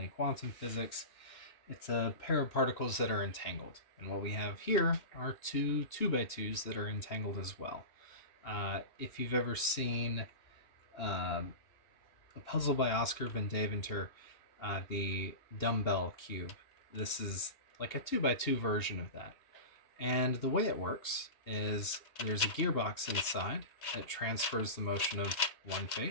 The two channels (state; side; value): late; right; 2.8 ms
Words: quantum physics, it's a pair of particles that are entangled. And what we have here are two 2x2s that are entangled as well. If you've ever seen um, a puzzle by Oscar Van Deventer, the dumbbell cube, this is like a 2x2 version of that. And the way it works is there's a gearbox inside that transfers the motion of one